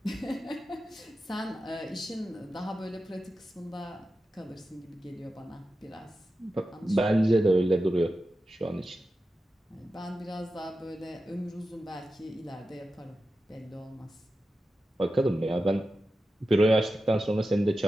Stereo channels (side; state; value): both; normal; correlation 0.92